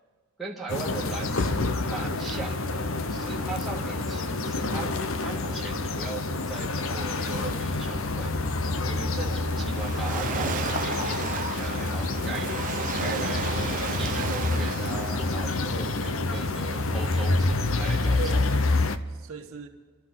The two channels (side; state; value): both; normal; correlation 0.51